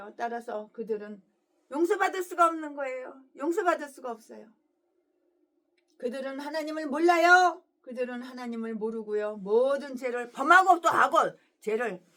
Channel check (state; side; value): identical; both; correlation 1.00